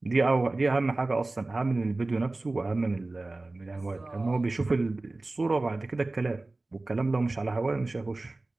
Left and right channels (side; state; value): left; quieter; 3.1 dB